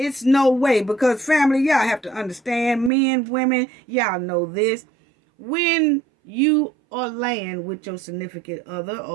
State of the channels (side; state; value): left; drops out; at 2.9 s